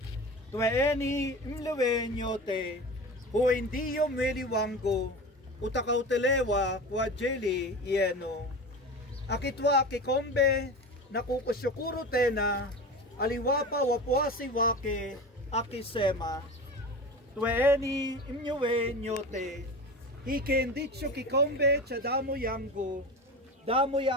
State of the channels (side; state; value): both; normal; correlation 0.30